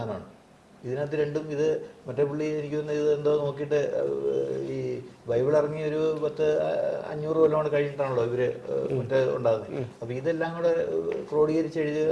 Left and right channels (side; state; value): both; identical; correlation 1.00